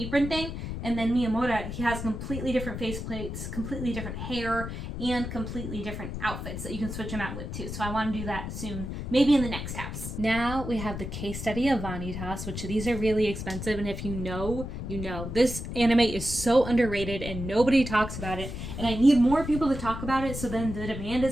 thing. And then Miyamura, he has completely different face plates, completely different hair, and completely different outfits that you can switch them out with too. So I want to do that soon, maybe in the next house. Now we have the case study of Vanitas, which these are really expensive. And if you know, you know. This anime is so underrated and nobody talks about it. And I need more people to talk about it so then the demand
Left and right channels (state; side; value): noise; left; rumble, 6 dB below the sound